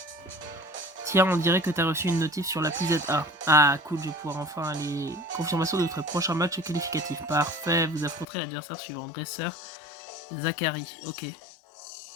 Tiens, on dirait que t'as reçu une notif sur l'appli ZA. Ah, cool, je vais pouvoir enfin aller. Confirmation de votre prochain match qualificatif. Parfait, vous affronterez l'adversaire suivant. Dresseur, Zachary. Ok.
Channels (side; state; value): right; drops out; at 8.2 s